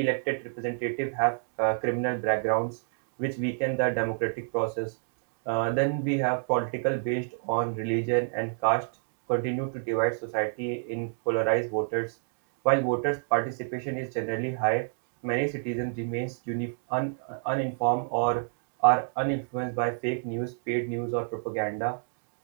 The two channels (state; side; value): silent; left; digital silence